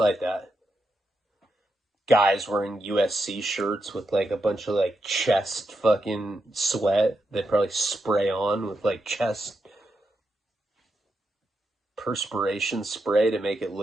that. Guys wearing USC shirts with like a bunch of like chest fucking sweat they probably spray on with like chest perspiration spray to make it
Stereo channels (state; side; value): normal; both; correlation 0.84